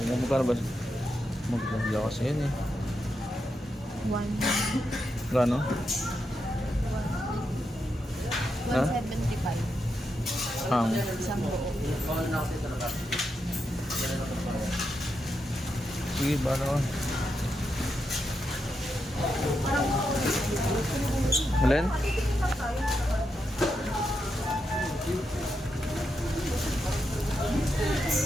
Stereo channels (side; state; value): both; normal; correlation 0.85